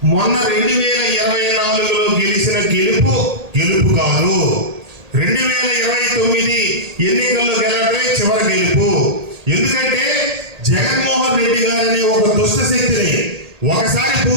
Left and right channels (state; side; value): late; left; 1.8 ms